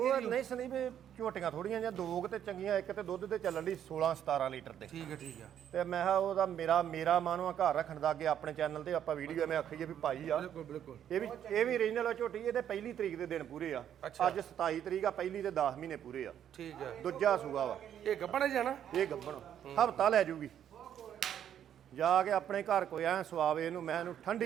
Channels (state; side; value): quieter; left; 9.8 dB